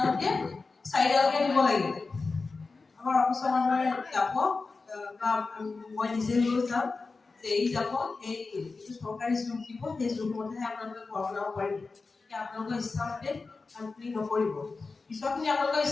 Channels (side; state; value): right; quieter; 4.1 dB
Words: চাইডলৈকে দিব লাগিব আমাৰ অফিচৰ মানুহে যাব বা মই নিজে লৈ যাম যে এই যাব এই চৰকাৰী জোখ দিব সেই জোখমতেহে আপোনালোকে ঘৰ বনাব পাৰিব এতিয়া আপোনালোকৰ ইচ্ছামতে কামখিনি নকৰিব পিছৰখিনি আপোনালোকৰ